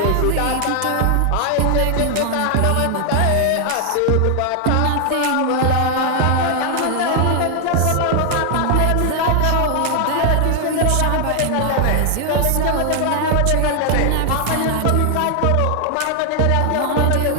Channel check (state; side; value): different; both; correlation 0.00